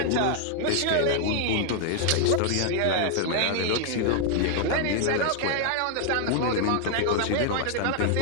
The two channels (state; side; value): different; both; correlation 0.00